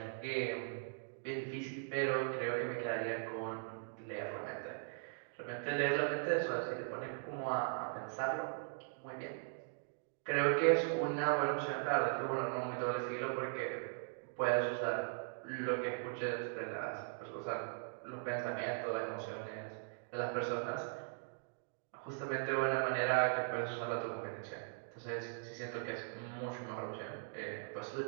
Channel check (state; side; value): silent; left; digital silence